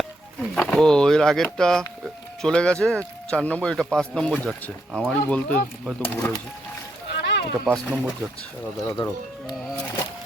ও এর আগেরটা চলে গেছে 4 নম্বর। এটা 5 নম্বর যাচ্ছে। আমারই বলতে হয়তো ভুল হয়েছে। এটা 5 নম্বর যাচ্ছে। দাঁড়াও দাঁড়াও।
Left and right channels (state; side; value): normal; both; correlation 0.78